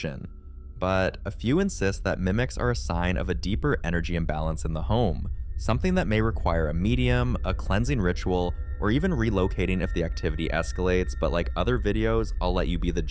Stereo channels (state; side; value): identical; both; correlation 1.00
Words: But a few insist that mimics are a sign of a deeper energy imbalance in the home, something that may require a medium, a cleansing ritual, or even relocating if the activity escalates, but like other videos, I'll let you be the